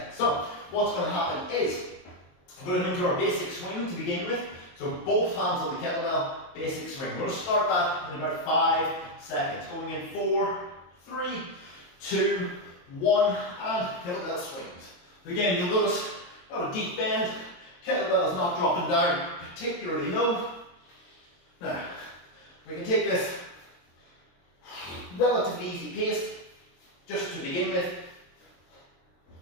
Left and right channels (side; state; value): right; late; 22 ms